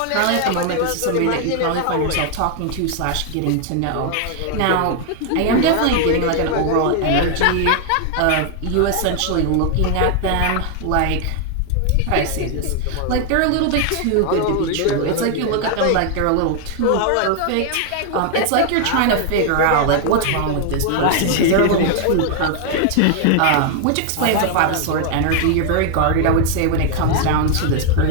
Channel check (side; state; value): both; different; correlation 0.00